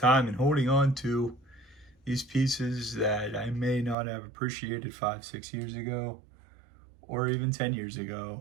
and holding on to these pieces that I may not have appreciated 5-6 years ago, or even 10 years ago,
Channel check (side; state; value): left; drops out; at 4.0 s